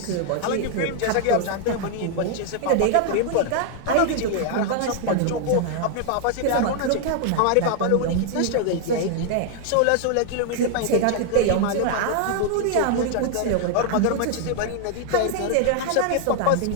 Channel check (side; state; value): both; different; correlation 0.00